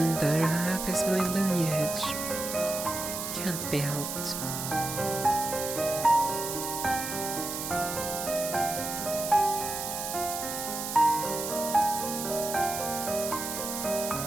the other half is my lineage. Can't be helped.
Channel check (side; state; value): right; noise; hiss, 5 dB below the sound